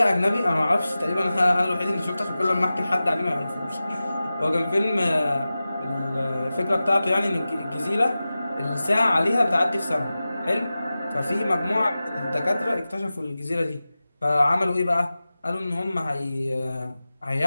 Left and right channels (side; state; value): both; inverted; correlation -0.95